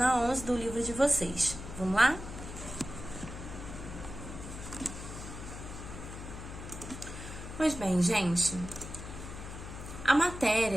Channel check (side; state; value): left; noise; hum, 10 dB below the sound